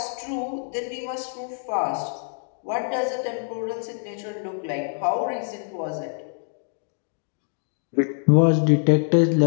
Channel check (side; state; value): right; silent; digital silence